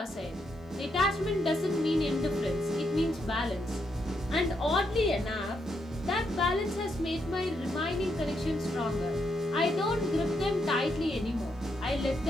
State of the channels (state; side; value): normal; both; correlation 0.79